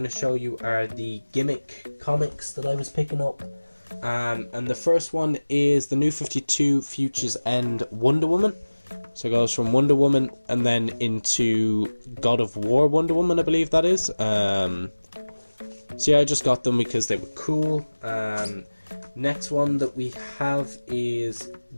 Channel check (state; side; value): inverted; both; correlation -1.00